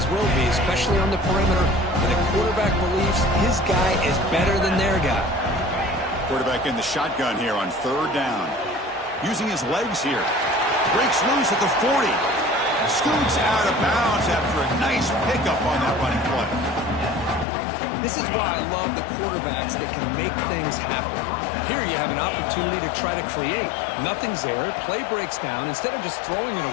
will be, especially on the perimeter. When the quarterback believes his guy is better than their guy. Quarterback in the shotgun here on 3rd down. Using his legs here. Breaks loose at the 40. Scoots out of bounds after a nice pickup on that running play. This is why I love the quarterbacks that can make things happen. Here you have an opportunity to try to create. Nothing's there. Play breaks down. Instead of just throwing it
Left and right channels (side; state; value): right; drops out; at 17.4 s